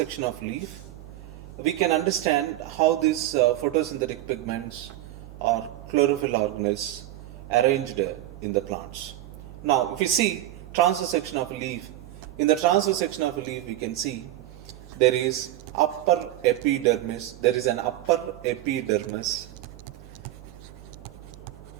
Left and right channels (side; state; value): left; quieter; 14.3 dB